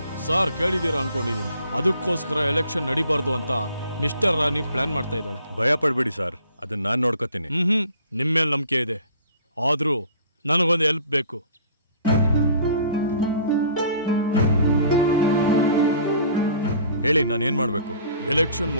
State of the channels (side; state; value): both; inverted; correlation -0.52